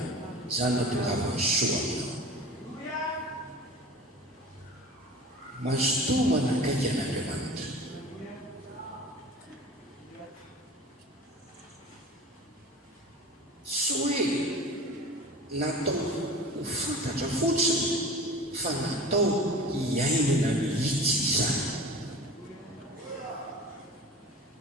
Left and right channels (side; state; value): both; normal; correlation 0.38